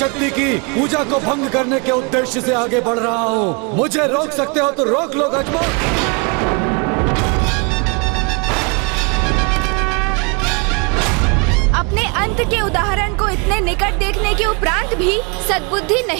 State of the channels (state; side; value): quieter; left; 32.9 dB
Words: की पूजा को भंग करने के उद्देश्य से आगे बढ़ रहा हूँ। मुझे रोक सकते हो तो रोक लो गजमुख। अपने अंत के उदाहरण को इतने निकट देखने के उपरांत भी सद्बुद्धि